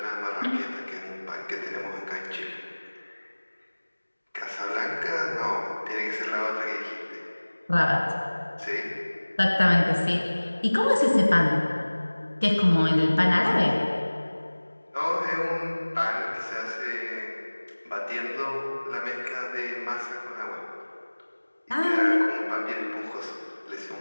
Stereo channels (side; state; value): both; inverted; correlation -1.00